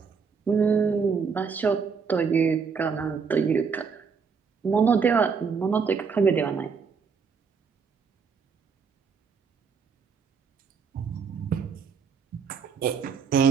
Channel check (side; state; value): left; quieter; 5.8 dB